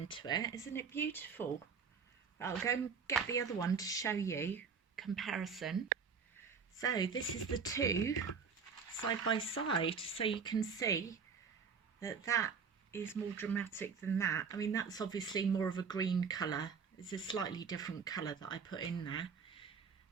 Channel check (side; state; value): left; quieter; 6.0 dB